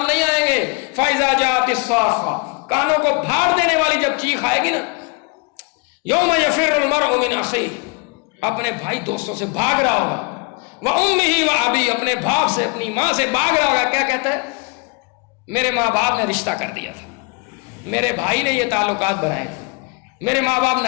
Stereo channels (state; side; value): quieter; right; 31.0 dB